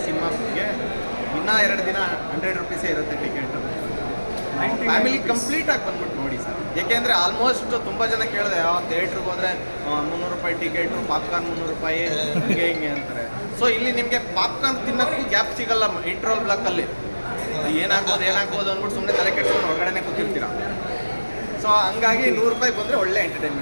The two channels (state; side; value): inverted; both; correlation -1.00